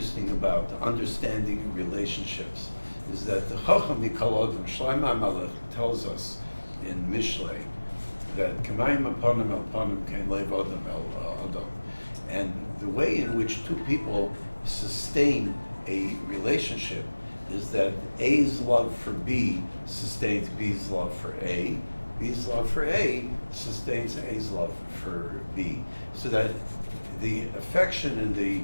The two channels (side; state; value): both; inverted; correlation -1.00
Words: about understanding relationships is that the Chacham Mikol Adam, Shlomo HaMelech, tells us in Mishlei that K'mayim Aponim El Ponim Kein Lev Adam El Adam. And the way in which two people sustain a relationship is that A's love for B sustains B's love for A, B's love for A sustains A's love for B. So that the affection and the